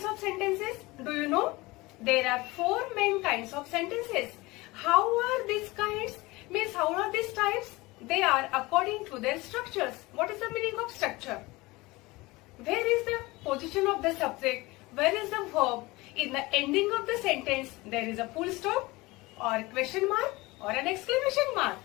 of sentences? Do you know? There are four main kinds of sentences. How are these kinds? Means how are these types? They are according to their structures. What is the meaning of structure? Where is the position of the subject? Where is the verb? In the ending of the sentence, there is a full stop or question mark or an exclamation mark.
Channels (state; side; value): quieter; right; 21.9 dB